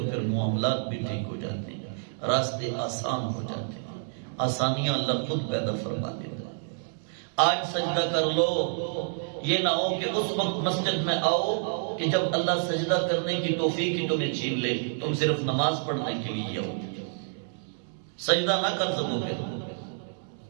پھر معاملات بھی ٹھیک ہو جاتے ہیں، راستے آسان ہو جاتے ہیں، آسانیاں اللہ خود پیدا فرما دیتا ہے. آج سجدہ کر لو. یہ نہ ہو کہ اس وقت مسجد میں آؤ کہ جب اللہ سجدہ کرنے کی توفیق ہی تمہیں چھین لے، تم صرف نماز پڑھنے کے لیے آؤ، سجدہ نہ کر سکو،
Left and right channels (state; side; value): silent; left; 59 dB below the other